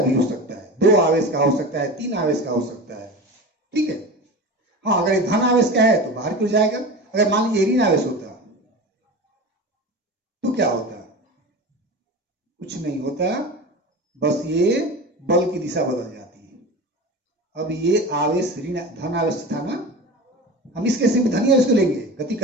भी हो सकता है, 2 आवेश का हो सकता है, 3 आवेश का हो सकता है। ठीक है। हाँ, अगर धन आवेश का है तो बाहर क्यों जाएगा? अगर मान लीजिए ऋण आवेश होता तो क्या होता? कुछ नहीं होता, बस ये बल की दिशा बदल जाती है। अब ये आवेश ऋण धन आवेश था ना, हम इस केस में धन आवेश को लेंगे गति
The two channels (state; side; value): normal; both; correlation 0.30